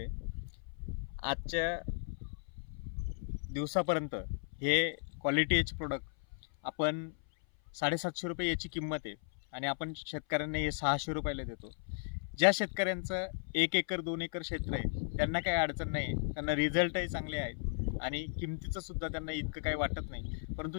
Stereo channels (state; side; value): silent; right; 54 dB below the other